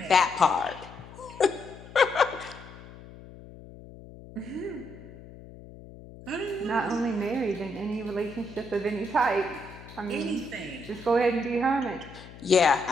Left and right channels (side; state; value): left; noise; hum, 17 dB below the sound